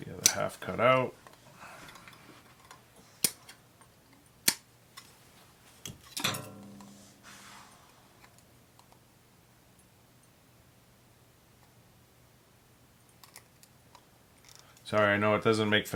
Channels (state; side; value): identical; both; correlation 1.00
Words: the other half cut out. Sorry, I know it doesn't make